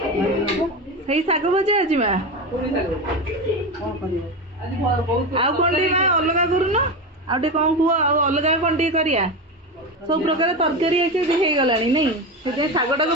सही शाग भजा आज माँ आउ कौन माँ अलग करून आउ कौन कह अलग कौन करिया सब प्रकार तरकारी हो गला नहीं से शागटा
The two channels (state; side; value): normal; both; correlation 0.20